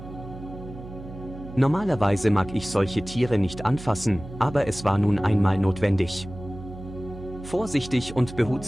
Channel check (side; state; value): right; noise; hum, 13 dB below the sound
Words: Normalerweise mag ich solche Tiere nicht anfassen, aber es war nun einmal notwendig. Vorsichtig und